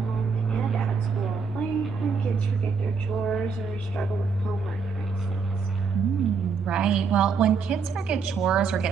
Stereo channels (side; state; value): left; quieter; 5.3 dB